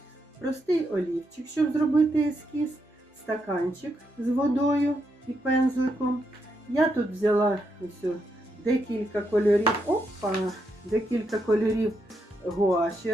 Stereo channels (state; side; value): normal; both; correlation 0.80